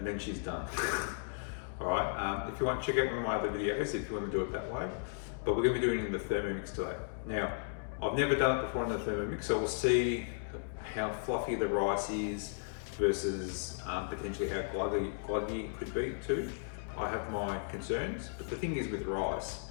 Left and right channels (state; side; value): silent; right; digital silence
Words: then she's done. Alright, if you want to check out one of my other videos if you want to do it that way, but we're going to be doing it in the Thermomix today. Now, I've never done it before in the Thermomix, so we'll see how fluffy the rice is versus potentially how gluggy it could be too. I have my concerns, but the thing is with rice,